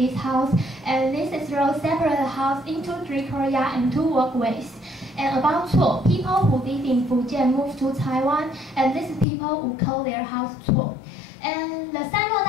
house, and this is road separate the house into 3 Korea and 2 walkways. And about Cuo, people who live in Fujian moved to Taiwan, and these people who call their house Cuo. And the Sanluo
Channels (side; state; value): right; drops out; at 9.2 s